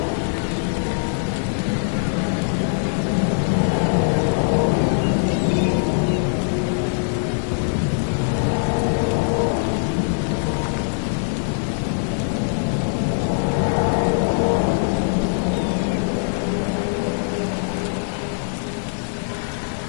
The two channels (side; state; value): right; silent; digital silence